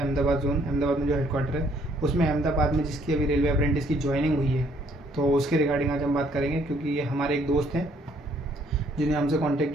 जोन, अहमदाबाद में जो हेडक्वार्टर है उसमें अहमदाबाद में जिसकी अभी रेलवे अप्रेंटिस की ज्वाइनिंग हुई है, तो उसके रिगार्डिंग आज हम बात करेंगे। क्योंकि ये हमारे एक दोस्त हैं जिन्हें हमसे कांटेक्ट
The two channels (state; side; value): normal; both; correlation 0.65